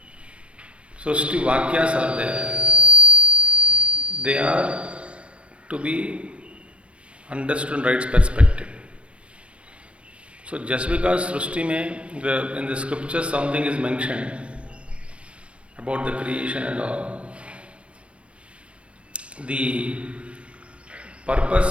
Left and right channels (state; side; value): late; left; 0.060 ms